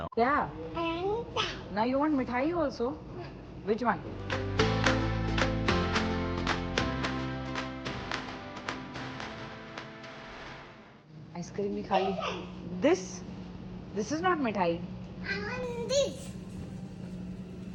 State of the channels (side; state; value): both; identical; correlation 1.00